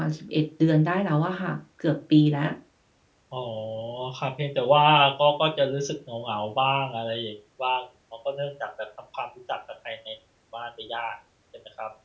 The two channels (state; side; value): identical; both; correlation 1.00